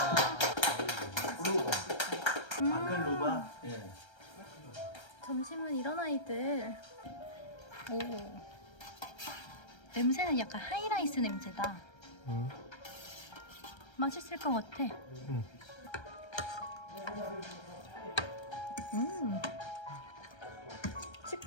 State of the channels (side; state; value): right; late; 1.3 ms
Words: 아클루바. 점심은 이런 아이들. 오. 냄새는 약간 하이라이스 냄새다. 맛있을 것 같아.